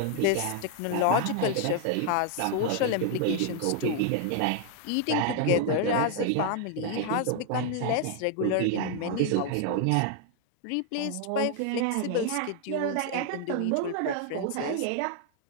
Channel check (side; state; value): both; different; correlation 0.00